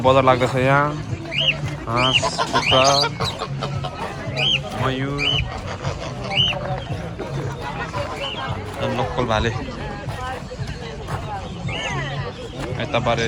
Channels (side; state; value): both; identical; correlation 1.00